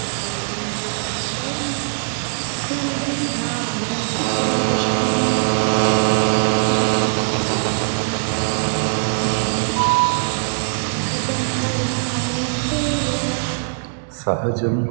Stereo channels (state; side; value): silent; left; digital silence